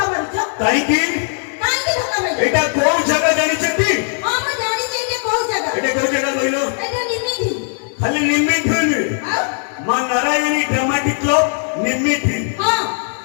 এটা কোন জায়গা জানিছেন আমি জানি যে এটা কোন জায়গা এটা কোন জায়গা কইলো এটা নিমিতি খালি নিমিতি হইনি মা নারায়ণী ড্রামাটিক ক্লাব নিমিতি হ্যাঁ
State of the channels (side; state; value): right; silent; 67 dB below the other